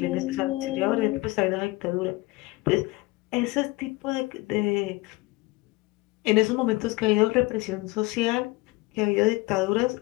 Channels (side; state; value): right; quieter; 21.8 dB